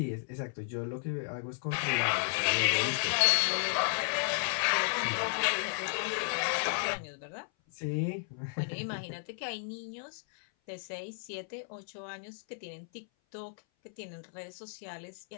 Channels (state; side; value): silent; right; 55 dB below the other